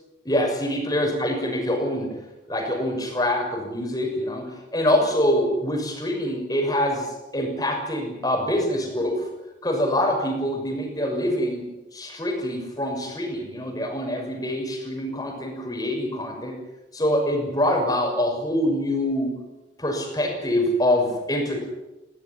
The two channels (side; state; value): both; normal; correlation 0.41